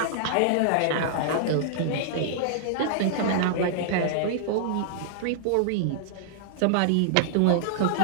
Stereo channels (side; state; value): both; different; correlation -0.01